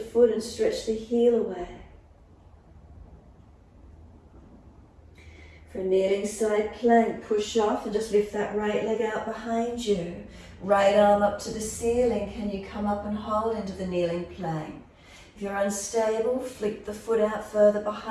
and stretch the heel away. For a kneeling side plank, push off and just lift that right leg out behind you. Right arm up to the ceiling. Can you come up and hold into the kneeling plank? If you're unstable, flick the foot out further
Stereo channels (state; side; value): identical; both; correlation 1.00